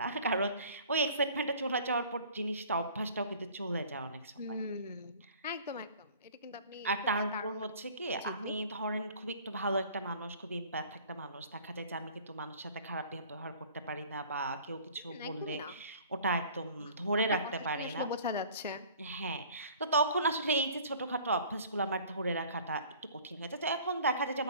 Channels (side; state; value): both; inverted; correlation -0.49